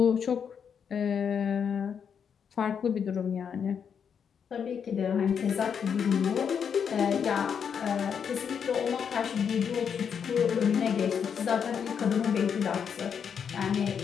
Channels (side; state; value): right; quieter; 7.2 dB